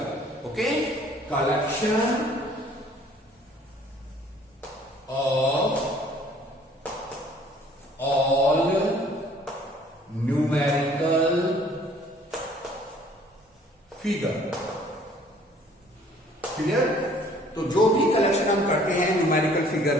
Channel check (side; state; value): both; normal; correlation 0.56